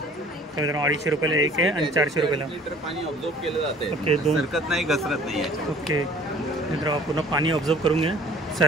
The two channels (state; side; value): normal; both; correlation 0.51